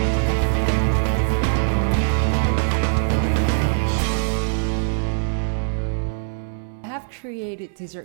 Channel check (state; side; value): silent; left; 62 dB below the other